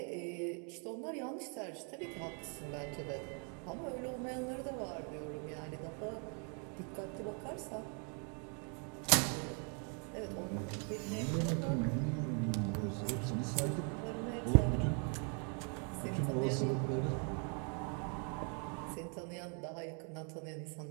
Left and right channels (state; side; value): quieter; left; 39.4 dB